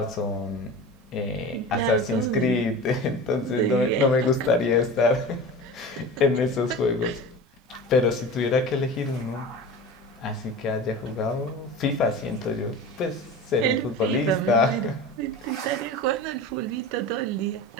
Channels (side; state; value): both; normal; correlation 0.33